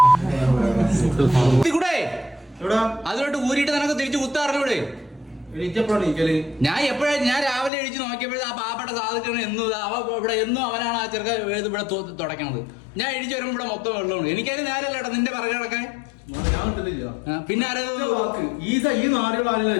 അതിലോട്ട് ഊരിയിട്ട് നിനക്ക് തിരിച്ചു കുത്താറിലൂടെ? ഞാൻ രാവിലെ എഴുതി നോക്കിയപ്പോഴേ ആ പാപ്പയുടെ സാധിക്കണം എന്നും അവനാണ് ആ ചെറുക്ക ഇവിടെ തുടക്കണത്. ഞാൻ എഴുതി വരുമ്പോ ഇവിടെ മൊത്തം വെള്ളമാണ്. എനിക്കതിന് നേരല്ലേട്ടാ നിന്റെ പറകെ കിടക്കാൻ. പിന്നെ ഈ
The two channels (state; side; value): drops out; right; at 7.7 s